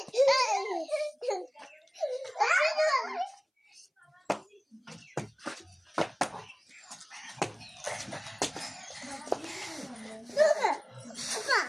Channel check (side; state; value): both; identical; correlation 1.00